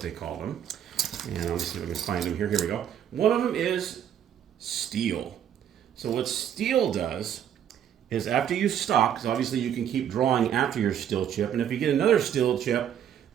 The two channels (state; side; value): quieter; left; 9.5 dB